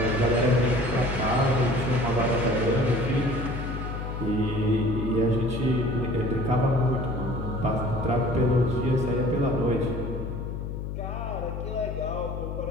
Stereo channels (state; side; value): noise; left; hum, 5 dB below the sound